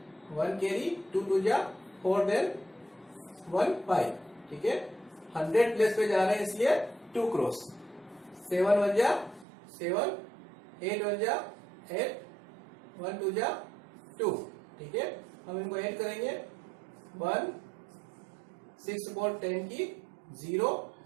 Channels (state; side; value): drops out; left; at 9.5 s